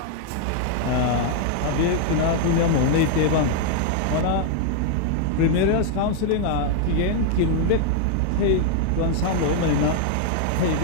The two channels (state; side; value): different; both; correlation 0.00